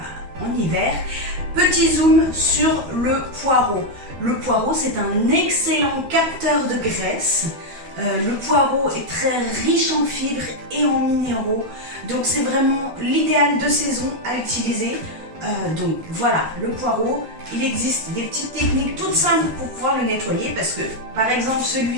en hiver, petit zoom sur le poireau. Le poireau, c'est un excellent capteur de graisse. Le poireau est très riche en fibres et en minéraux, donc c'est vraiment l'idéal de saison à utiliser. Donc voilà, le poireau, il existe des petites techniques toutes simples pour pouvoir le nettoyer parce que par exemple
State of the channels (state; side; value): late; left; 13 ms